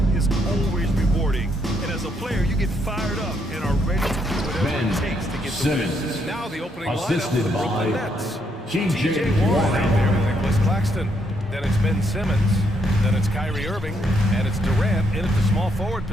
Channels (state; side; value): normal; both; correlation 0.74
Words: is always rewarding. And as a player, you get fired up and are ready to do whatever it takes to get the win. Now the opening assisted lineup for the Brooklyn by Nets. T.J. Warren out there with Nicholas Claxton. Then it's Ben Simmons. Then it's Kyrie Irving. And it's Durant in at the small forward